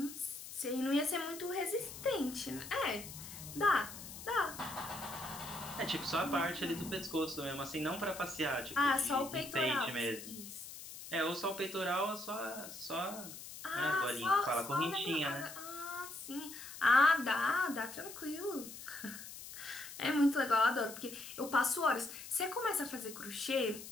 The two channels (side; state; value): left; noise; hiss, 12 dB below the sound